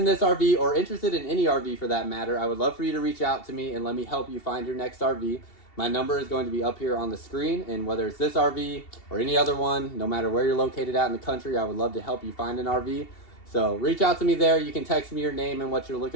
this RV, or interested in any RV for that matter, I would love for you to reach out to me and let me help you find your next RV. My number is going to be up here on the screen, and whether it's this RV or any other one, no matter where you're located at in the country, I would love to help you find an RV. So reach out to me there. You can text me your name and what you're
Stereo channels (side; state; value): right; late; 2.7 ms